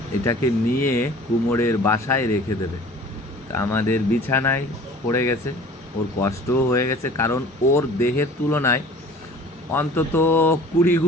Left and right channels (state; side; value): normal; both; correlation 0.46